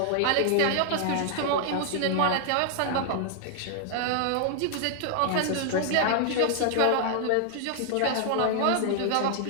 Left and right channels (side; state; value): both; different; correlation 0.00